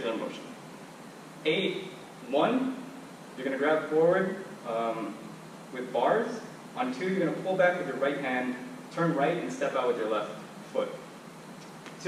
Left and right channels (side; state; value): both; identical; correlation 1.00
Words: motion. 8, 1, you're going to grab forward with bars. On 2, you're going to pull back with your right hand, turn right, and step out with your left foot.